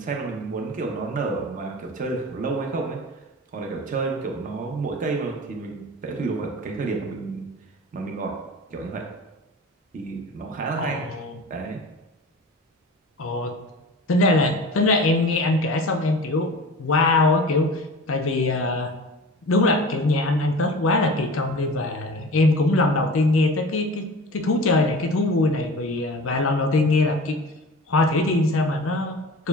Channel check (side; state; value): both; normal; correlation 0.37